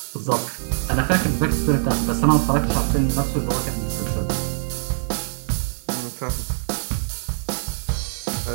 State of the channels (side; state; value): left; silent; digital silence